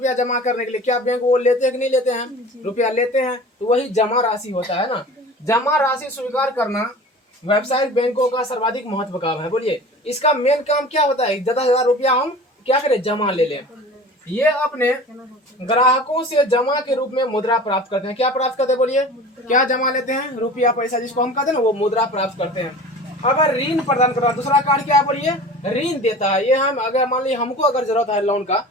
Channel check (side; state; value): both; normal; correlation 0.39